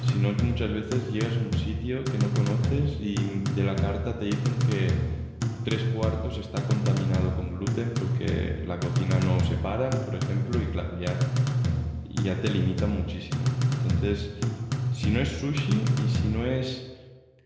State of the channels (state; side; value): identical; both; correlation 1.00